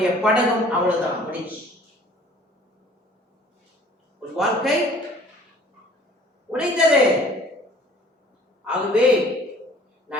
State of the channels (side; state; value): both; normal; correlation 0.53